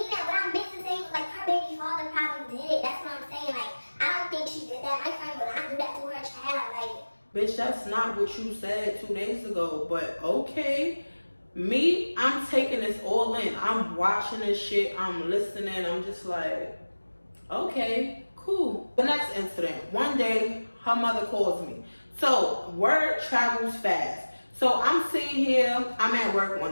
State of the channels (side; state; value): both; inverted; correlation -1.00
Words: that. What I meant to say was like her baby father probably did it. That's what I'm saying. Like, I don't think she did that. My friend would not do that to her child. Like, bitch, that's not what you said 2 days ago. But okay. Me, I'm taking this all in. I'm watching this shit. I'm listening. I'm just like, okay, cool. The next incident. One day, her mother calls me. So, word travels fast. So, I'm sitting here. I'm at work